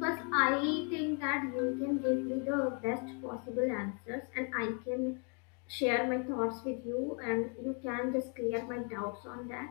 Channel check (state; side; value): quieter; right; 38.5 dB